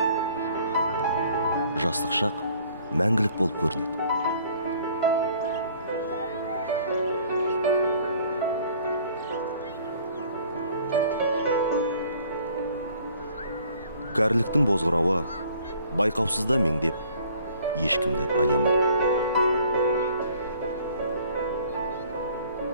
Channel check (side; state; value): both; inverted; correlation -0.56